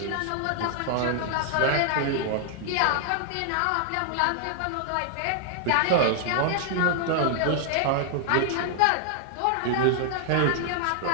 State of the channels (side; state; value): both; different; correlation 0.00